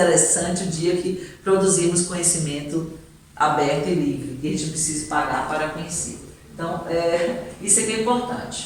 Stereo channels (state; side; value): identical; both; correlation 1.00